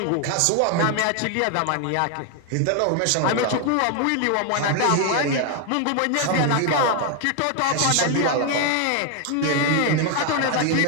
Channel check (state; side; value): different; both; correlation 0.01